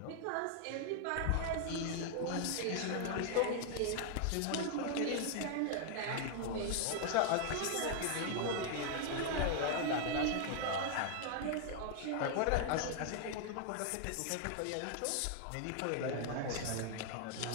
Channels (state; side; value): different; both; correlation 0.00